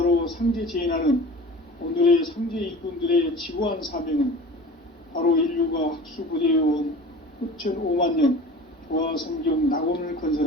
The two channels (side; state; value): both; normal; correlation 0.39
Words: 상제 제인하는 오늘의 상제 일꾼들의 지고한 사명은 바로 인류가 학수고대해온 후천 5만 년 조화성경 낙원을